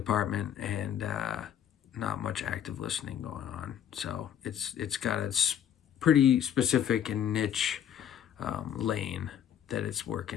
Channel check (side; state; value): right; quieter; 9.6 dB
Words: and not much active listening going on. So it's got a pretty specific and niche lane that it's